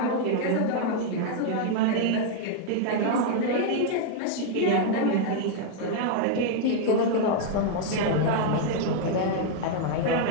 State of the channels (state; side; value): different; both; correlation 0.00